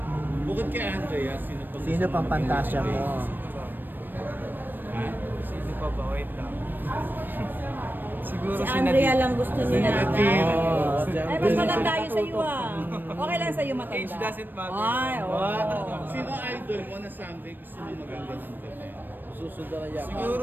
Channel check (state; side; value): late; left; 0.093 ms